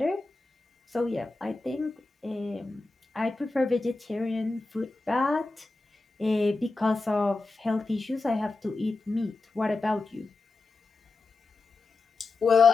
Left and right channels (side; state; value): right; quieter; 3.5 dB